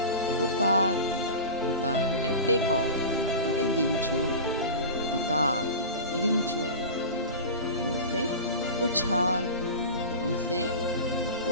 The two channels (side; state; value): both; inverted; correlation -0.31